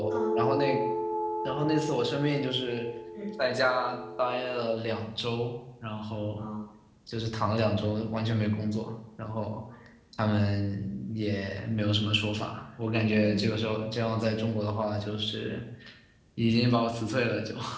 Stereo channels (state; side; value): identical; both; correlation 1.00